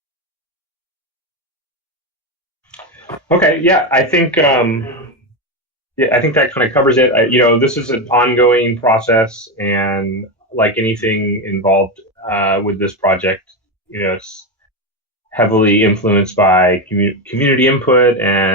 Okay, yeah, I think that kind of covers it. This is an ongoing process, and like anything involved with this project, it's heavily influenced by community input,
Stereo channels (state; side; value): normal; both; correlation 0.12